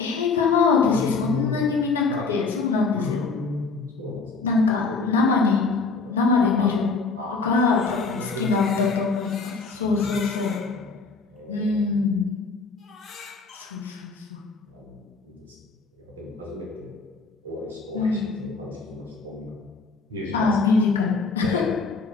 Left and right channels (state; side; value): quieter; right; 4.3 dB